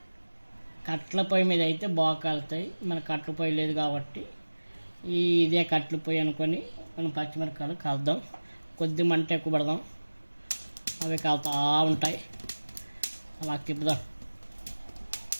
కట్ల పొయ్యి మీద అయితే బాగా కాలుతాయి. మన కట్ల పొయ్యి లేదు కాబట్టి ఇదే కట్ల పొయ్యి అనుకొని మనం పచ్చిమిరపకాయలు కాల్దాం. కొద్ది మంట ఎక్కువ పడదాం, అవి కాలుతూ ఉంటాయి. అలా తిప్పుదాం.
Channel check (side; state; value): both; inverted; correlation -1.00